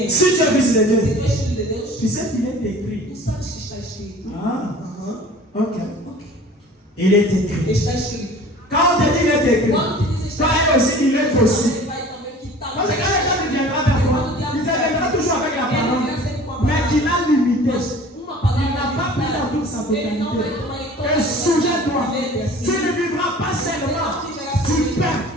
Si tu es fils de Se Dieu, tu és filho de Deus, tu sais qu'il est écrit. tu sabes que está escrito. Ah, Aham. ok. Ok. Il est écrit. Está escrito. Quand on te dit qu'il est écrit, Quando te diz toi está aussi, il est aussi. ele vai também quitar. Parce que quand le diable viendra vers toi, il te viendra toujours avec la parole, mais qu'il a limité. Uma palavra Il n'a pas pris dans toute sa ele não vai totalité. tomar em toda Et souviens-toi, Lembre assim. tu ne vivras pas seulement du pain,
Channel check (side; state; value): both; normal; correlation 0.45